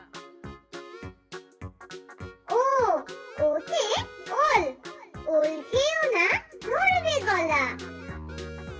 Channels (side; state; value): both; identical; correlation 1.00